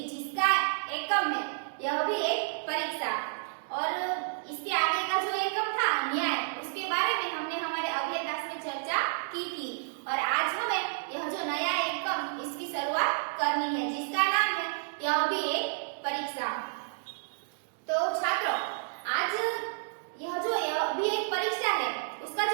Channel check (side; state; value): left; silent; digital silence